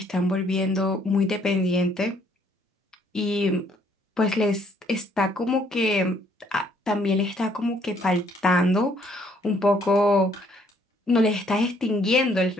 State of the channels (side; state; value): both; normal; correlation 0.66